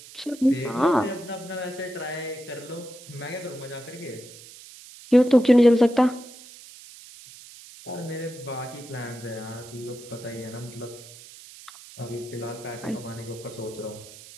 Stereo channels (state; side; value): noise; right; hiss, 18 dB below the sound